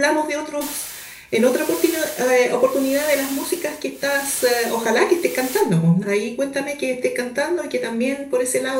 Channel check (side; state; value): both; identical; correlation 1.00